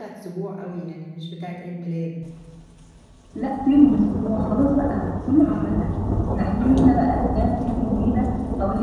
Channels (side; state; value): both; identical; correlation 1.00